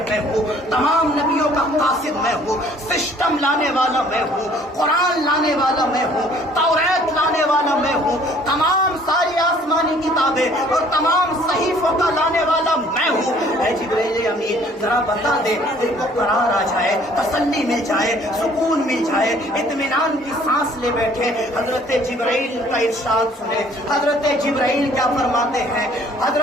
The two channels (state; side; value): normal; both; correlation 0.57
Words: میں ہوں, تمام نبیوں کا قاصد میں ہوں, سسٹم لانے والا میں ہوں, قرآن لانے والا میں ہوں, توریت لانے والا میں ہوں, تمام ساری آسمانی کتابیں اور تمام صحیفوں کا لانے والا میں ہوں. اے جبریل امین ذرا بتا دے, دل کو قرار آ جائے, تسلی مل جائے, سکون مل جائے, اطمینان کی سانس لے بیٹھے. حضرت جبرائیل کا ارشاد سنے. حضرت جبرائیل کیا فرماتے ہیں؟